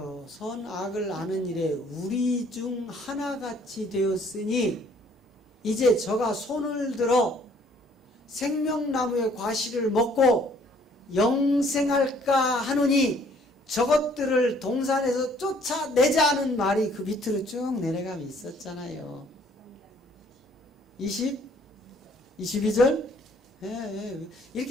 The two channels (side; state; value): both; normal; correlation 0.61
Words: 선악을 아는 일에 우리 중 하나같이 되었으니 이제 저가 손을 들어 생명나무의 과실을 먹고 영생할까 하노니 저것들을 동산에서 쫓아내자는 말이 그 밑으로 쭉 내려가면 있었잖아요. 22절?